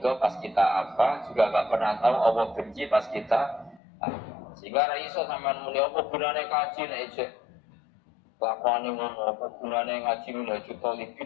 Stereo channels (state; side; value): drops out; right; at 3.8 s